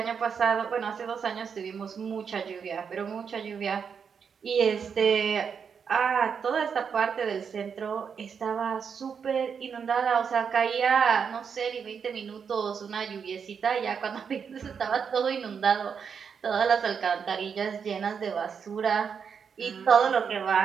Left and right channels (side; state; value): left; quieter; 6.6 dB